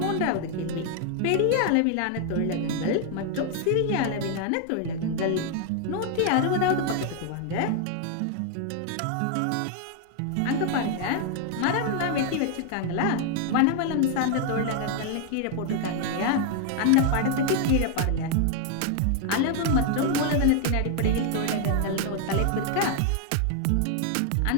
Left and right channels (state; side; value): different; both; correlation 0.00